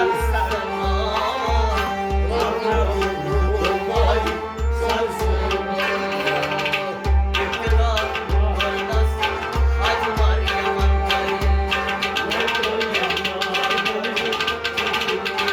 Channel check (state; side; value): identical; both; correlation 1.00